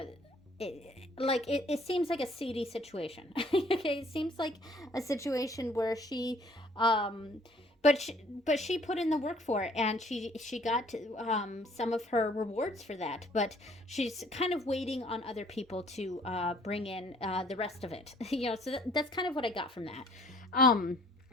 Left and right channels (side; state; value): both; normal; correlation 0.59